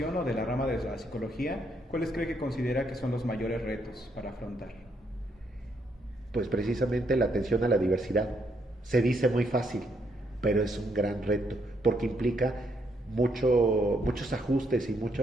o de la rama de la psicología, ¿cuáles cree que considera que son los mayores retos para afrontar? Pues precisamente la atención a la diversidad. Se dice muy fácil, pero es un gran reto, porque implica muchos ajustes y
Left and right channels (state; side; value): normal; both; correlation 0.74